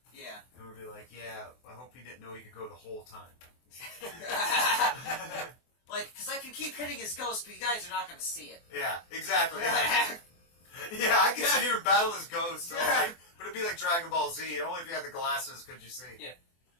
yeah. And we'll be like, "Yeah, I hope he didn't know he could go the whole time." Like, because I can keep hitting his ghost, but you guys are not going to see it. Yeah, exactly. Yeah, I can sit here and battle his ghost, all right, but it'd be like Dragon Ball Z. Only if you had the glasses could you see. Yeah.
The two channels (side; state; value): right; late; 24 ms